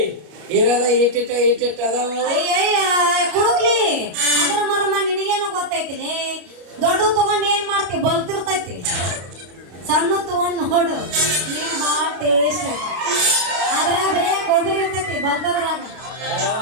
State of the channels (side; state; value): left; late; 34 ms